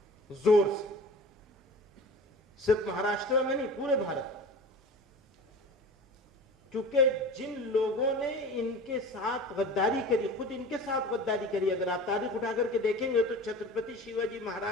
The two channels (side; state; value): both; normal; correlation 0.38